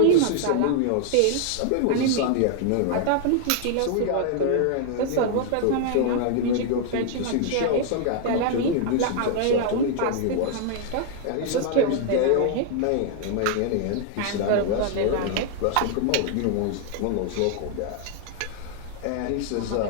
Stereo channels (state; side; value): different; both; correlation 0.00